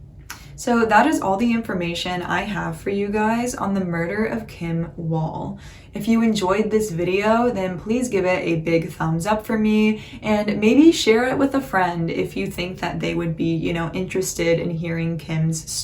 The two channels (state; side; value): identical; both; correlation 1.00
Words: So that is all the information I have for you guys on the murder of Kim Wall. If you enjoyed this video, then please give it a big thumbs up for me, and maybe share it with a friend if you think that they would be, you know, interested in hearing Kim's